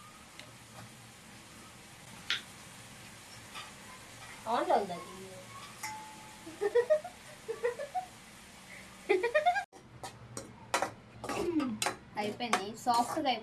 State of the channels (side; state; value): both; identical; correlation 1.00